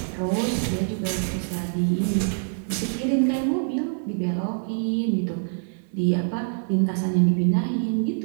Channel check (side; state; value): left; silent; 62 dB below the other